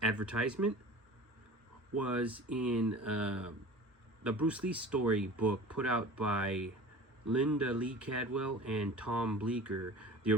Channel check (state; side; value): normal; both; correlation 0.39